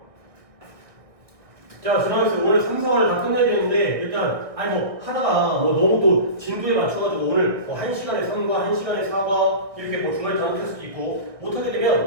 자, 지나가면서 오늘 3, 4화를 다 끝내야 되는데, 일단, 아니, 뭐, 하다가, 뭐, 너무 또 진도에 맞춰가지고, 오늘 뭐 1시간에 3과, 1시간에 4과, 이렇게 뭐 중간에 다 못할 수도 있고, 못하게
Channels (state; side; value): late; left; 1.8 ms